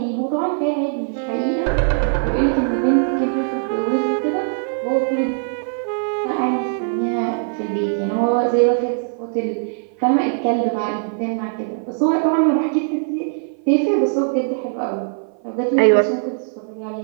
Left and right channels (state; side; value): silent; left; 56 dB below the other